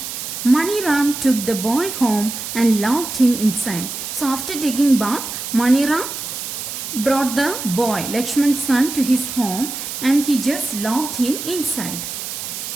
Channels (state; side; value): noise; right; hiss, 7 dB below the sound